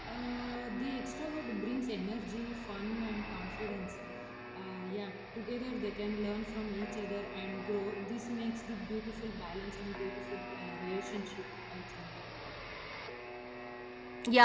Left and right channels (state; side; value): identical; both; correlation 1.00